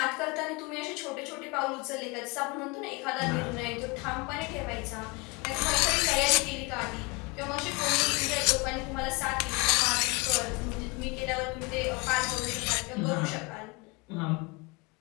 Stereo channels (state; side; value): quieter; right; 27.9 dB